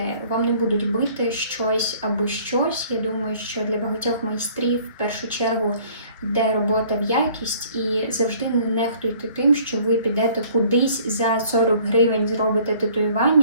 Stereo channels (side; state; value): both; inverted; correlation -0.56